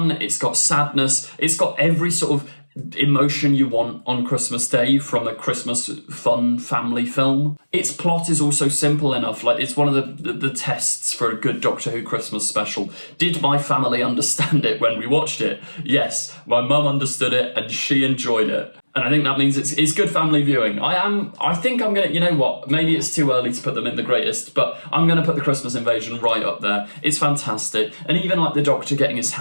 it's got sadness, it's got every sort of emotion you want on Christmas Day from a Christmas fun family film. Its plot is also simple enough, like it's one of the tests for a good Doctor Who Christmas special. Did my family understand it when we watched it? Yes, my mum understood it and she enjoyed it. And I think that means it's good family viewing. I think I'm gonna, you know what, maybe it's too early to put them in the greatest, but I'm gonna put The Christmas Invasion right up there. It's fantastic. And even like the Doctor getting his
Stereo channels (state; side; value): inverted; both; correlation -1.00